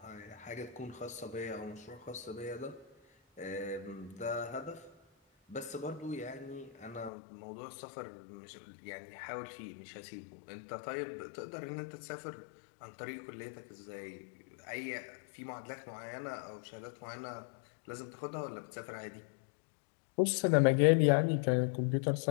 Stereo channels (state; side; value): drops out; right; at 7.1 s